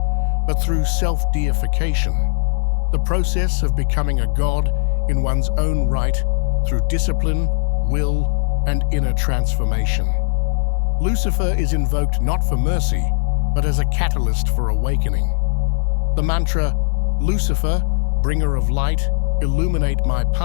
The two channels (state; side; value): silent; right; digital silence